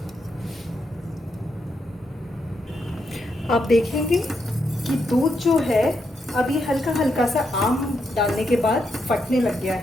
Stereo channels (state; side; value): normal; both; correlation 0.81